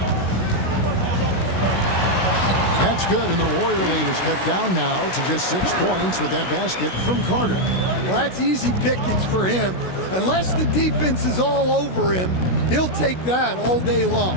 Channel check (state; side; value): late; right; 16 ms